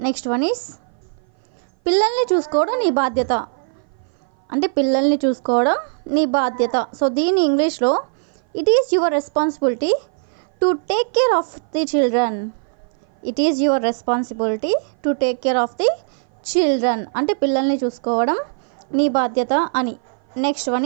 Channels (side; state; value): left; silent; 58 dB below the other